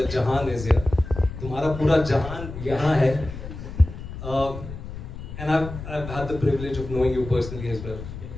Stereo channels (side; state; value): left; noise; rumble, 10 dB below the sound